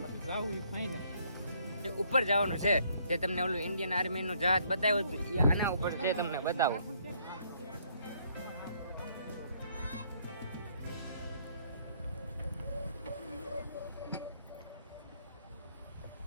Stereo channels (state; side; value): inverted; both; correlation -0.67